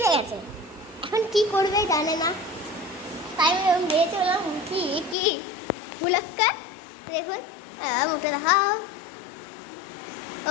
গেছে। এখন কি করবে জানে না, তাই আমি মেয়ে চললাম। কি মুলাক্কা দেখুন, মুখে দেখাও। ও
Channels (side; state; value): right; drops out; at 5.2 s